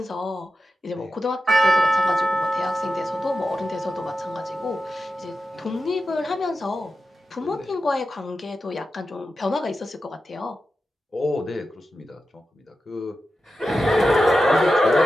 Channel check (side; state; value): both; normal; correlation 0.90